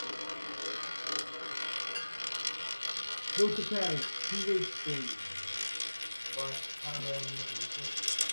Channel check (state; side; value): inverted; both; correlation -1.00